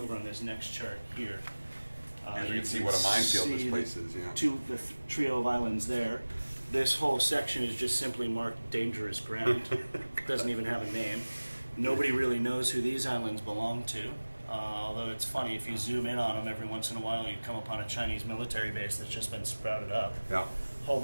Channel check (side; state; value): both; inverted; correlation -1.00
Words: on this next chart here. You can see what a minefield this place is, yeah. The trio of islands there. This whole section is just simply marked dangerous ground. Doesn't even have a name. Nobody really knows who these islands belong to. Although it's funny, if you zoom in on them every once in a while, you come upon a Chinese military base that's just been sprouted up. Yeah. Whole